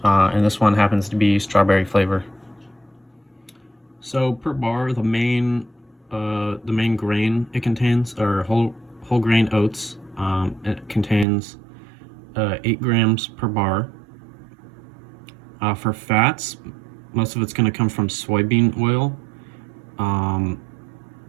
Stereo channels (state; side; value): drops out; left; at 11.2 s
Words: and this one happens to be strawberry flavor. So per bar, the main grain it contains are whole grain oats. It contains 8 grams per bar. For fats, most of it's going to come from soybean oil.